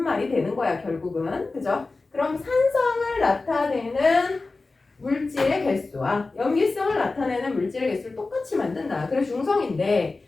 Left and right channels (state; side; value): quieter; right; 3.6 dB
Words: 말이 되는 거야, 결국은. 그죠? 그럼 산성을 나타내는 물질의 개수와 염기성을 나타내는 물질의 개수를 똑같이 만든다. 그래 중성인데